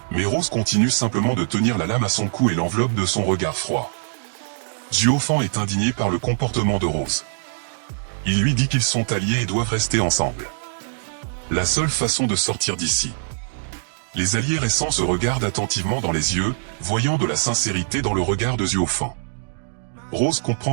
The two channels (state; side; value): silent; left; digital silence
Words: Mais Rose continue simplement de tenir la lame à son cou et l'enveloppe de son regard froid. Zuofan est indigné par le comportement de Rose. Il lui dit qu'ils sont alliés et doivent rester ensemble. La seule façon de sortir d'ici. Les alliés récents se regardent attentivement dans les yeux, voyant de la sincérité dans le regard de Zuofan. Rose